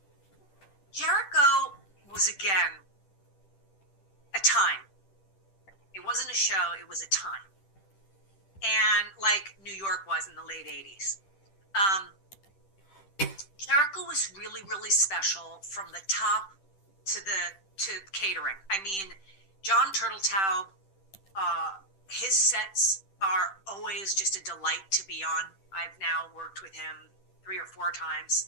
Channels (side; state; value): right; late; 10 ms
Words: Jericho was, again, a time. It wasn't a show. It was a time. And like New York was in the late 80s. Jericho was really, really special from the top to catering. I mean, John Turtletaub, his sets are always just a delight to be on. I've now worked with him 3 or 4